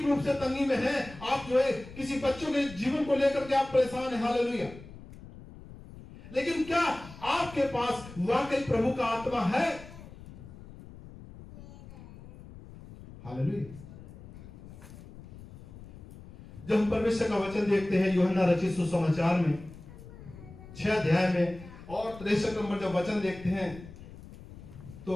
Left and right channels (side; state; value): left; noise; rumble, 17 dB below the sound